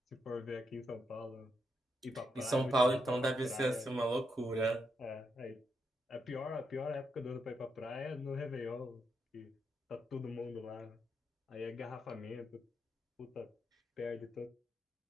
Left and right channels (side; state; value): both; normal; correlation 0.81